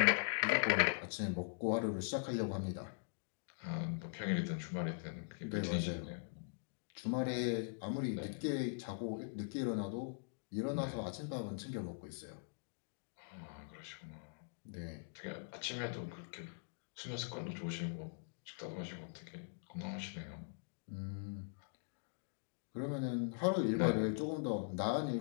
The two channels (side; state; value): right; silent; digital silence